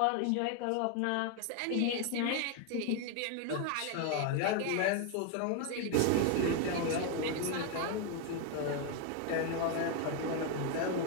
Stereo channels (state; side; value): different; both; correlation 0.01